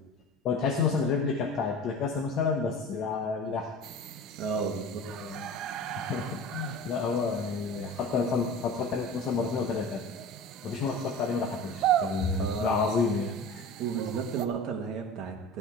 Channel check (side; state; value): both; normal; correlation 0.36